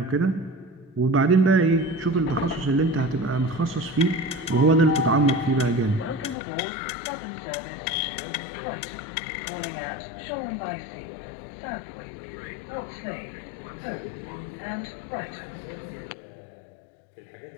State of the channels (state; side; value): drops out; right; at 6.4 s